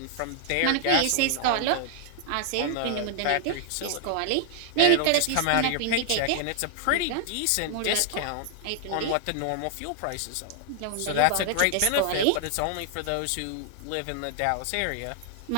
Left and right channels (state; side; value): different; both; correlation 0.00